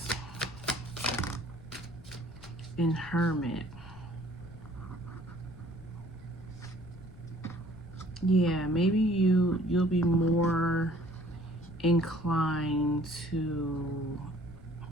and Hermit. Yeah, maybe you'll be more inclined to.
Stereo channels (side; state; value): left; noise; rumble, 18 dB below the sound